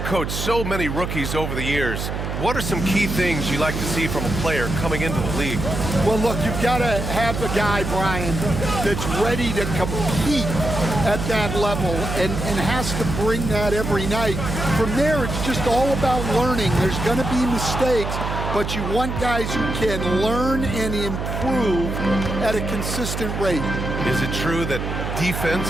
coached so many rookies over the years. What are some key things you like to see from a player coming into the league? Well, look, you've got to have a guy, Brian, that's ready to compete at that level and has to bring that every night. From there, it's just all about learning. There's going to be mistakes, but you want guys who can learn and improve at a consistent rate. Is it true that defense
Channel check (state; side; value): noise; right; hum, 4 dB below the sound